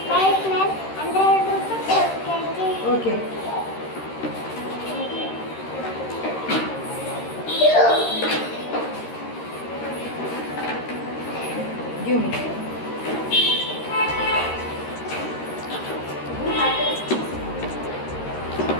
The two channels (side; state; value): right; late; 13 ms